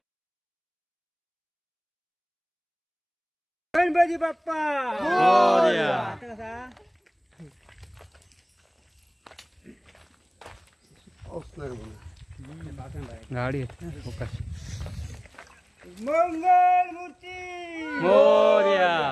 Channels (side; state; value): both; identical; correlation 1.00